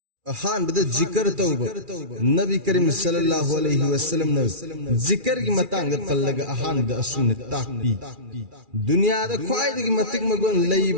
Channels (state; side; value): late; left; 2.4 ms